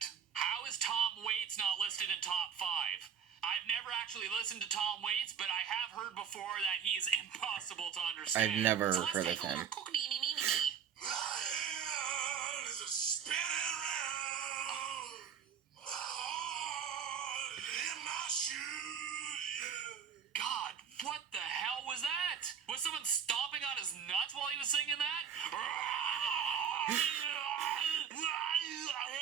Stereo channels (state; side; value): quieter; left; 7.8 dB